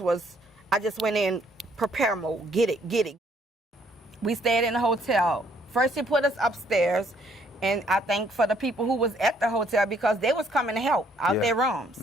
I just went in prepare mode, get it. We stayed in the hotel. First he put us upstairs, and I thank for the people who was at the hotel because they was coming to help out their rooms.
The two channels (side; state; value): both; normal; correlation 0.66